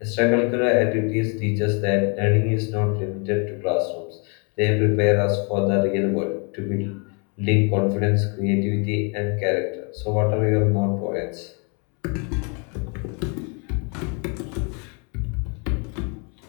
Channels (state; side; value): quieter; right; 35.5 dB